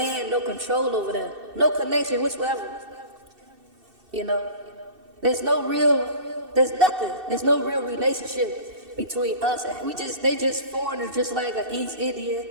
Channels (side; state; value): left; late; 2.7 ms